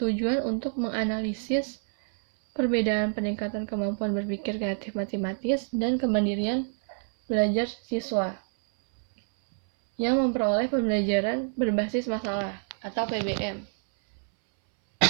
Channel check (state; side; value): silent; left; 60 dB below the other